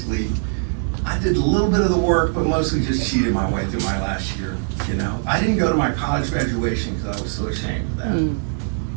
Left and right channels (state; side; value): silent; left; 65 dB below the other